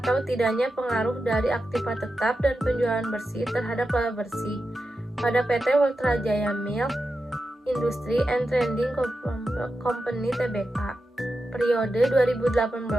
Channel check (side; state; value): both; normal; correlation 0.90